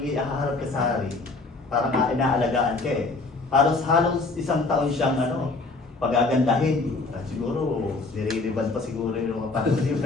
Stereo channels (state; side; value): quieter; right; 3.6 dB